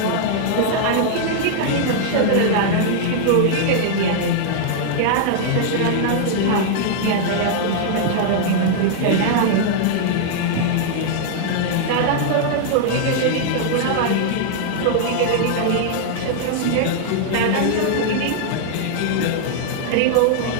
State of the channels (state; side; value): different; both; correlation -0.01